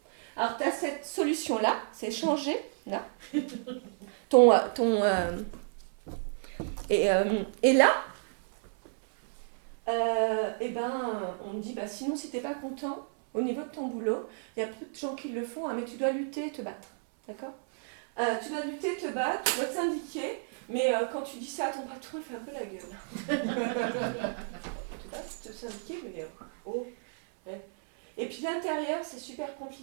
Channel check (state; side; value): silent; left; 57 dB below the other